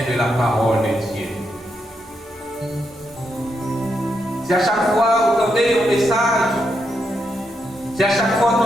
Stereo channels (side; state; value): both; normal; correlation 0.82